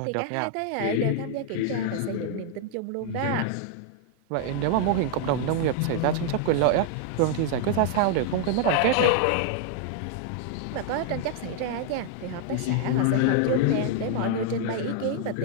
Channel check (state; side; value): different; both; correlation 0.00